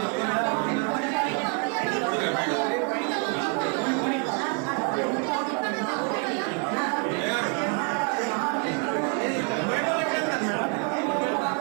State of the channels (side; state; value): left; quieter; 36.7 dB